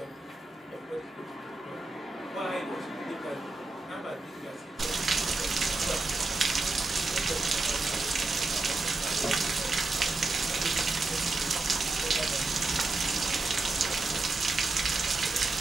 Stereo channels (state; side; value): quieter; left; 3.3 dB